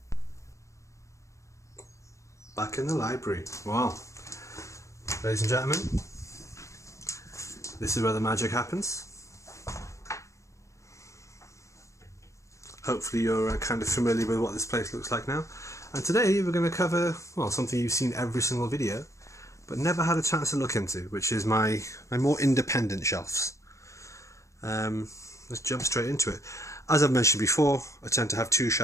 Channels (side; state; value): right; late; 0.15 ms